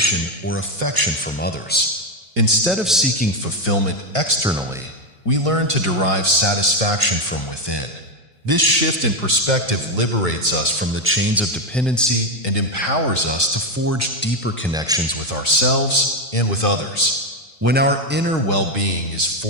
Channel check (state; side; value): normal; both; correlation 0.08